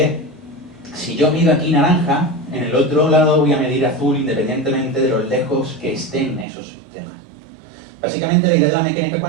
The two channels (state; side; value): drops out; left; at 6.5 s